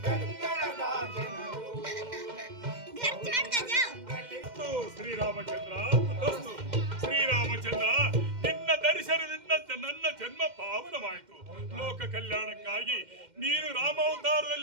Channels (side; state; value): left; late; 2.1 ms